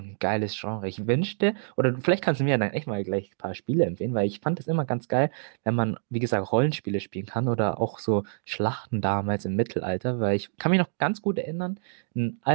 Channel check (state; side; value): silent; left; digital silence